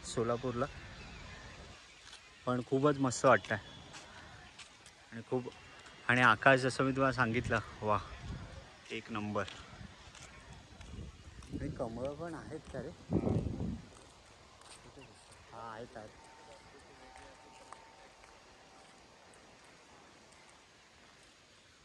सोलापूरला, पण खूपच मस्त वाटतं आहे. आणि आकाश जसं मी तुम्हाला सांगितलं, वा एक नंबर. आणि कमळं पण आहेत का रे? हा आहेत.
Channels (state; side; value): identical; both; correlation 1.00